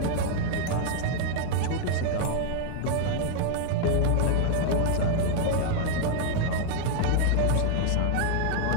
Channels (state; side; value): different; both; correlation 0.00